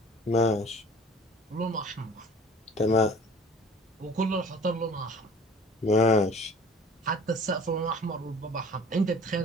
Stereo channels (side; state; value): both; normal; correlation 0.48